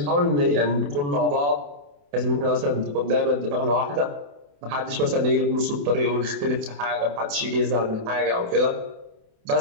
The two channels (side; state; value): left; late; 28 ms